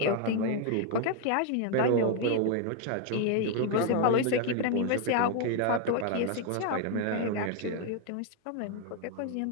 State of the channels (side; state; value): both; different; correlation 0.00